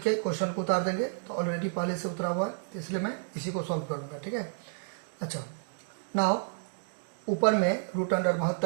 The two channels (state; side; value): silent; left; digital silence